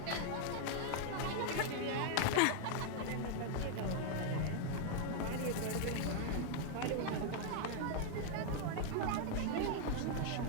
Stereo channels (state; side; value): different; both; correlation 0.00